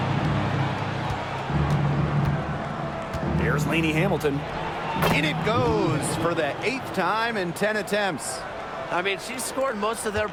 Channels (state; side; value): identical; both; correlation 1.00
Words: Here's Lainey Hamilton. In it goes for the 8th time in 10 attempts. I mean, she scored most of their